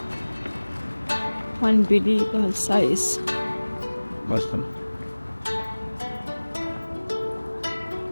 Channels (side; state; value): both; inverted; correlation -1.00